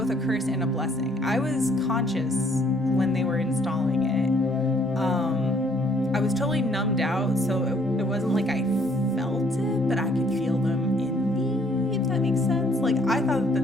a curse and a blessing. I was conscious when they were installing it. I was totally numbed out, so it wasn't like I felt it, but I could feel them in me, if that makes sense. Like, I thought that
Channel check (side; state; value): both; normal; correlation 0.63